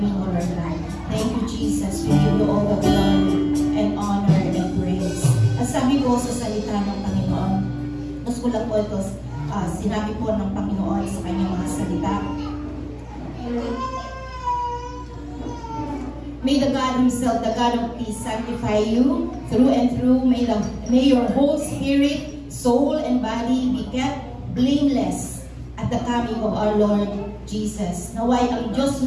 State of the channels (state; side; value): identical; both; correlation 1.00